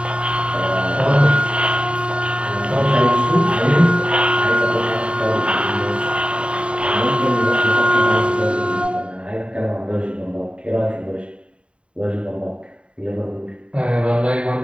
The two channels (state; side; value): late; left; 0.057 ms